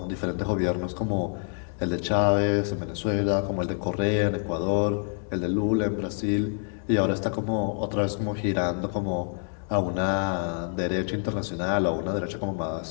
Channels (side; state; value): right; silent; 58 dB below the other